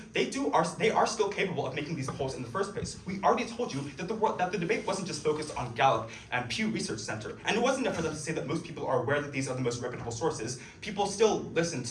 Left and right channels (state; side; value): identical; both; correlation 1.00